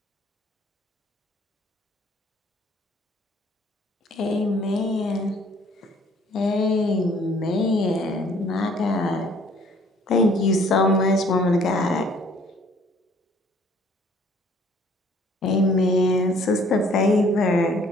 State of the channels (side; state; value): both; normal; correlation 0.58